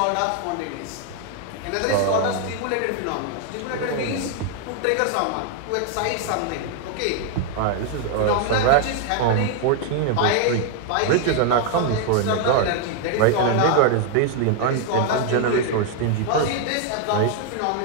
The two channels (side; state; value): both; different; correlation 0.00